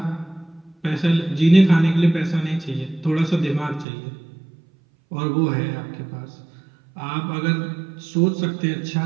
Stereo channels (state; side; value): drops out; left; at 3.9 s